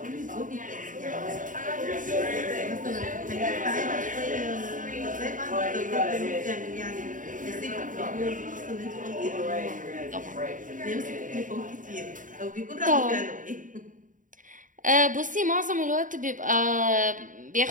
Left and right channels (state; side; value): late; left; 0.38 ms